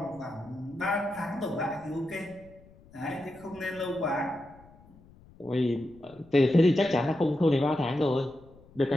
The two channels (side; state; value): left; noise; rumble, 25 dB below the sound